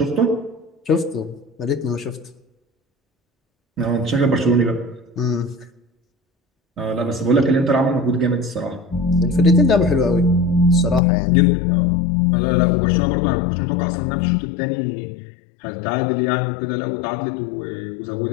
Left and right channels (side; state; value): right; drops out; at 11.0 s